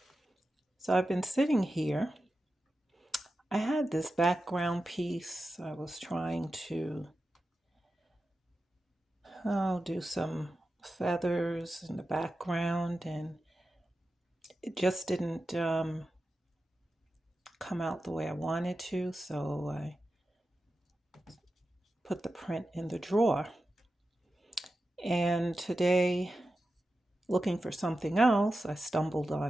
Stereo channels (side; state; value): both; normal; correlation 0.92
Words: So I've been sitting here. I had this background piece. I was trying to do some feathers in the background, and it just didn't come out the way I wanted to. So I put the print in the drawer. And today, looking for something else, I stumbled